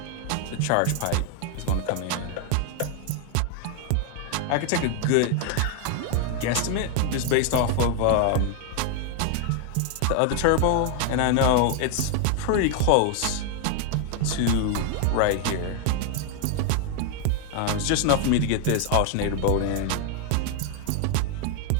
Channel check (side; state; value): both; different; correlation 0.00